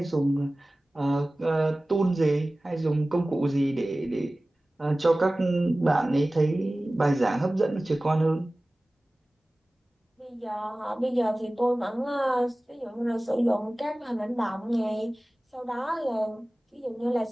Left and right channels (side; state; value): both; normal; correlation 0.98